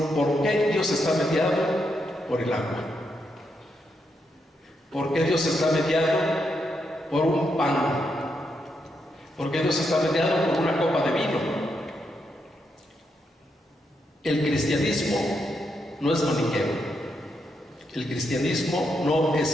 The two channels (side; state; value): both; normal; correlation 0.81